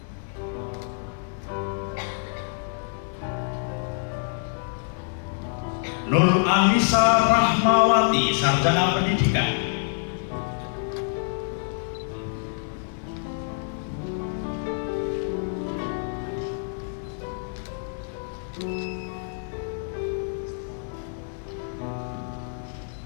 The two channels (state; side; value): silent; right; digital silence